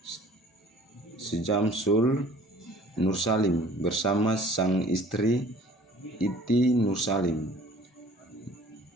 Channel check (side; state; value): both; normal; correlation 0.51